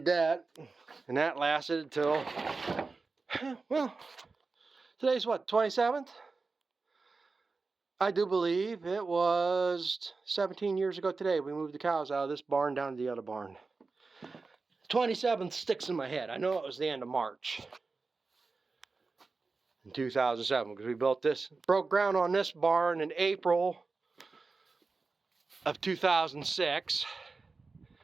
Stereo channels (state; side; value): quieter; left; 4.1 dB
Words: that, and that lasted until, well, today's what, 27th? I do believe it was 17 years ago today we moved the cows out of this barn down to the other barn. 27th sticks in my head. I know it was the end of March in 2007 because we broke ground on this barn in April of 2006.